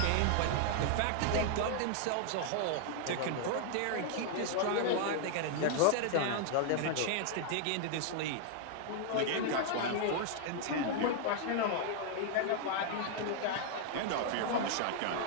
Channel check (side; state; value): both; different; correlation 0.00